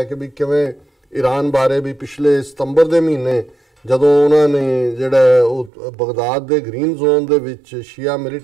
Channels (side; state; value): left; drops out; at 5.7 s